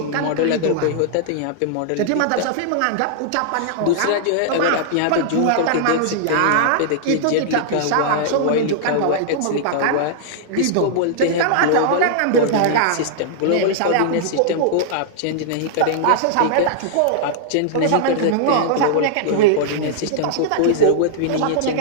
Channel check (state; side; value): different; both; correlation -0.01